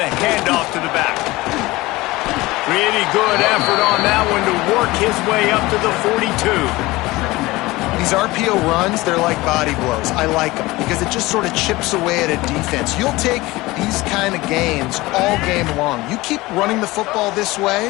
handoff to the back. Pretty good effort on that one to work his way up to the 42. These RPO runs, they're like body blows. I like them because it just sort of chips away at a defense. You'll take these kind of gains all game long. You keep running the football this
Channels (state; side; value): quieter; right; 20.2 dB